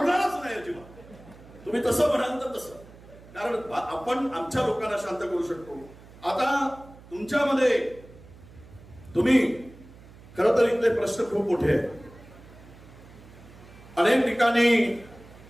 नाही अजिबात. तुम्ही तसं म्हणाल तर तसं, कारण आपण आमच्या लोकांना शांत करू शकतो. आता तुमच्यामध्ये तुम्ही खरं तर इथले प्रश्न खूप मोठे आहेत. अनेक ठिकाणी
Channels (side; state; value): right; noise; hum, 21 dB below the sound